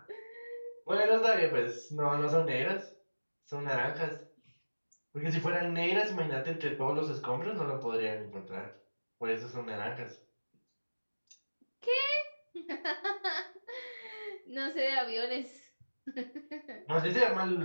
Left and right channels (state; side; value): inverted; both; correlation -1.00